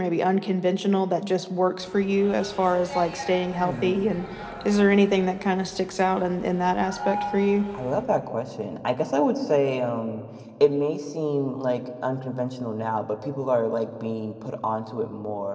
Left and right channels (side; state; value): both; identical; correlation 1.00